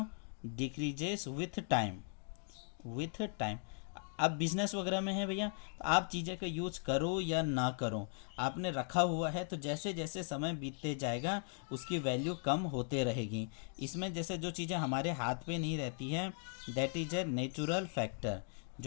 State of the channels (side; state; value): right; silent; 52 dB below the other